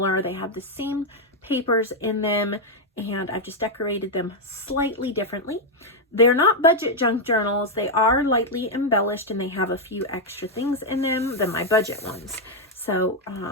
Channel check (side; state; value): both; normal; correlation 0.01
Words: They have the same papers in them, and I've just decorated them slightly differently. They're not budget junk journals. They are lightly embellished and they have a few extra things in them than my budget ones. So